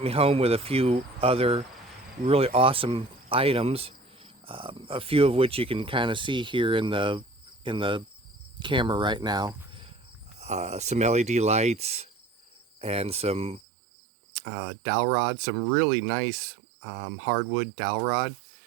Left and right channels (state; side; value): drops out; left; at 13.6 s